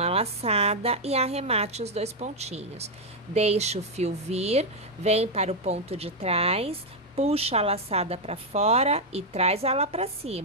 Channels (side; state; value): both; normal; correlation 0.01